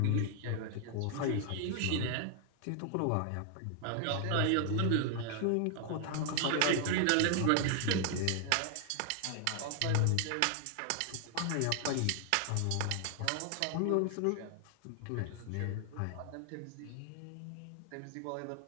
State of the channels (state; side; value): different; both; correlation 0.00